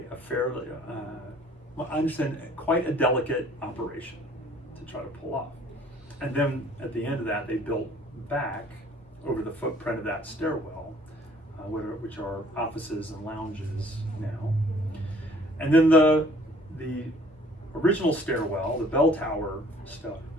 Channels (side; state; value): both; normal; correlation 0.56